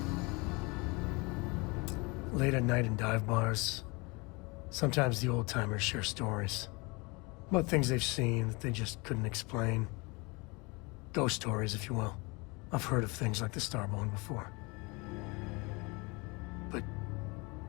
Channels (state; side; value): quieter; right; 27.6 dB